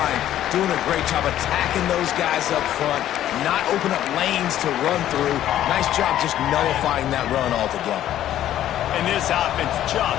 doing a great job attacking those guys up front, not open up lanes to run through. Nice job just nullifying that run altogether. And this offense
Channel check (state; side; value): quieter; right; 12.1 dB